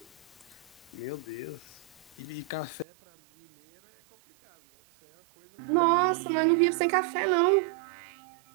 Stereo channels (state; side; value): drops out; left; at 2.9 s